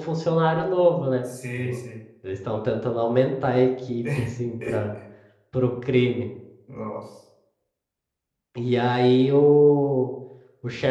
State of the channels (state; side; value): identical; both; correlation 1.00